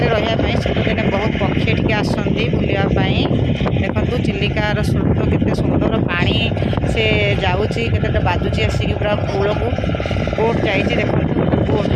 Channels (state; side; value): identical; both; correlation 1.00